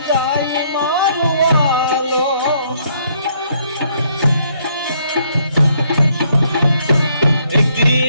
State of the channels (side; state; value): both; inverted; correlation -0.69